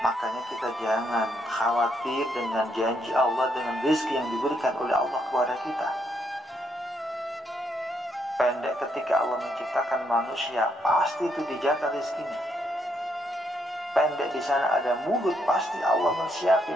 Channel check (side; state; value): both; normal; correlation 0.75